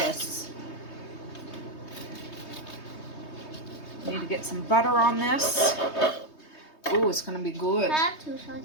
Need to get some butter on this. Ooh, it's gonna be good. I have two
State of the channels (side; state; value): right; late; 3.2 ms